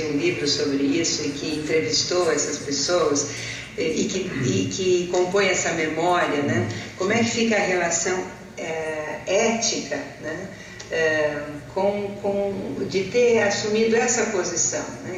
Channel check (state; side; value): identical; both; correlation 1.00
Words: um livro sobre isso e que entrevistou essas pessoas e que compõe essa memória, né? Como é que fica a relação ética, né? De ter assumido essa posição,